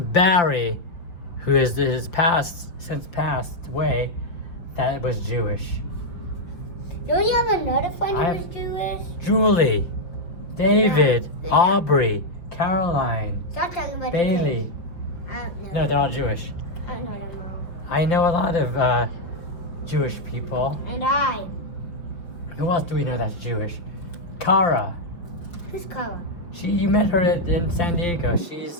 who is since passed away, that was Jewish. Don't you have another friend who was Jewish? Julie, David, Yeah. Aubrey, Caroline, Stop talking about Bailey. the kids. I don't know. No, they're all Jewish. I don't know them all. I know a lot of Jewish people. And I. Who else do we know that's Jewish? Kara. Who's Kara? You met her in San Diego.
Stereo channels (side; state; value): right; late; 5.8 ms